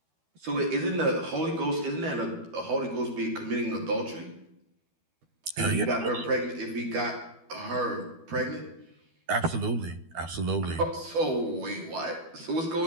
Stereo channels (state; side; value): late; left; 12 ms